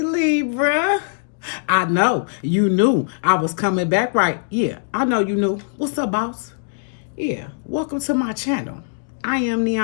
I know you knew I was coming back, right? Yeah, I know you knew. What's up, boss? Yeah, welcome to my channel. I am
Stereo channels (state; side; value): silent; right; digital silence